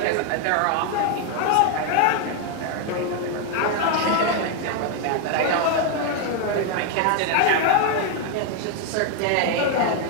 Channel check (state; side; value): different; both; correlation 0.01